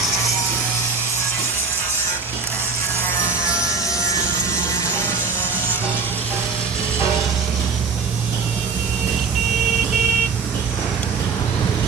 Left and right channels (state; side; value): quieter; left; 4.9 dB